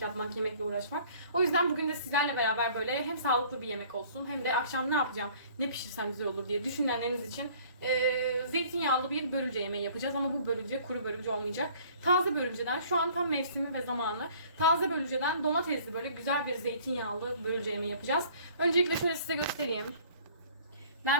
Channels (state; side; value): inverted; both; correlation -0.53